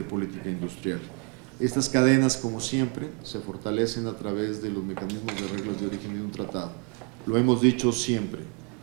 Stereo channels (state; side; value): quieter; left; 36.7 dB